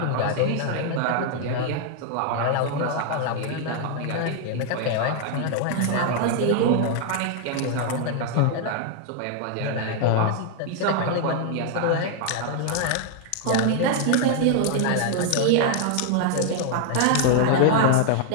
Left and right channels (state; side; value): different; both; correlation 0.00